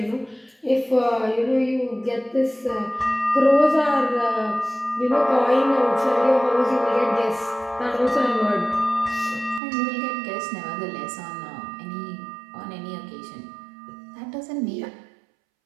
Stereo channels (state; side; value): drops out; left; at 9.6 s